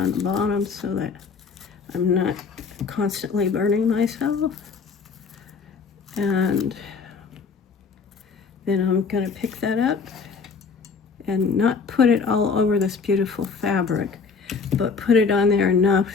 the bottom so that I'm not constantly burning myself. And then I'm gonna pick that up and not put it all over this beautiful fabric, but put it on there enough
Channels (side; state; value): right; quieter; 5.2 dB